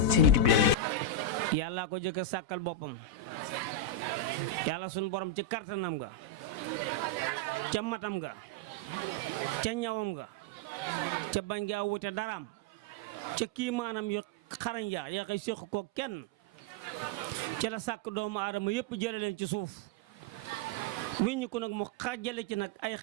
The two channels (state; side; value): late; left; 4.0 ms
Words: seen YouTube bi leen di. yàlla ko jëkk a sàkkal boppam yàlla suñu borom ci kartanam nga ca matam nga ca ñawam nga ca bañ ngaa wute daraam ca kii maanaam yu xarañ yaa koy séq ko kenn ca la sàkk doomu aadama yëpp jële leen ci suuf wiññi ko nag mu xàjjale ci nag ay